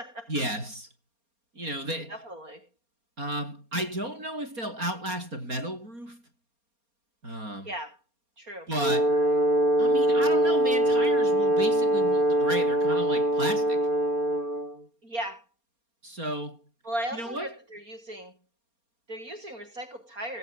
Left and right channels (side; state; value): left; late; 4.3 ms